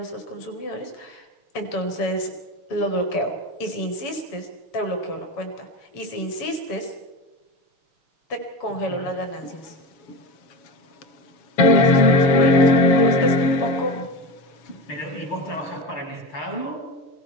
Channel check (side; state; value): right; late; 7.1 ms